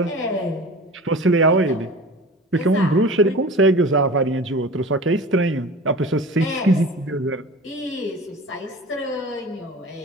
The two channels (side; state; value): both; normal; correlation 0.37